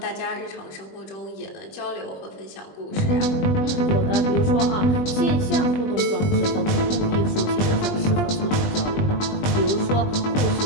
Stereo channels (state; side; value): late; right; 20 ms